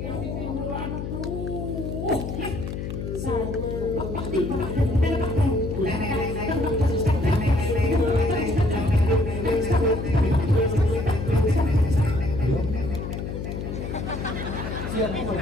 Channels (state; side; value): noise; left; hum, 5 dB below the sound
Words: di timuran tuh. Siapa